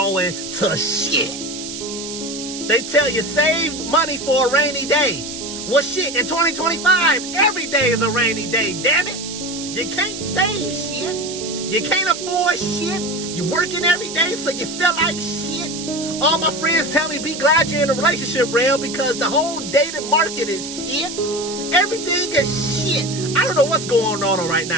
to shit. They tell you save money for a rainy day. Well, shit, in 2025, every day is a rainy day, damn it. You can't save shit. You can't afford shit. You're working every day, so you feel like shit. All my friends tell me be glad you're in a relationship, Rail, because the whole dating market is shit. Everything is shit. I don't know what's going on right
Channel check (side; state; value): right; noise; hiss, 8 dB below the sound